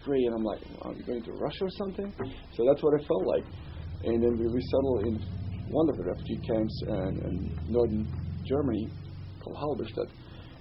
gray. And I'm like, are we going to Russia or something? So that's what it felt like. And then we settled in one of the refugee camps in northern Germany called Halberstadt.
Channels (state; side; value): identical; both; correlation 1.00